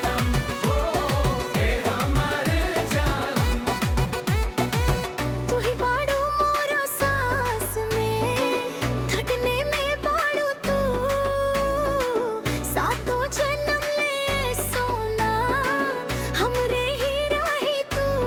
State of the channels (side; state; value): both; identical; correlation 1.00